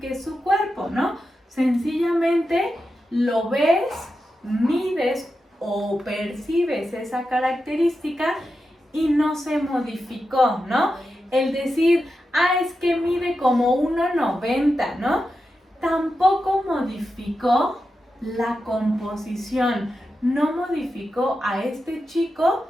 su cuerpo, ¿no? Sencillamente lo ves, mides o percibes esa característica y no se modificó, ¿no? El decir, es que mide como 1,90, ¿no? Tampoco modificó la composición, no modificó a este chico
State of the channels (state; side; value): normal; both; correlation 0.89